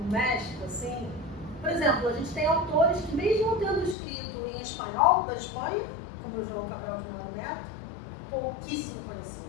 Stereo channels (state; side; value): drops out; right; at 4.0 s